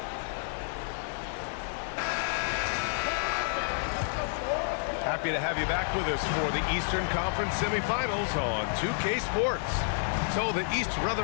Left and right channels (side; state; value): right; silent; digital silence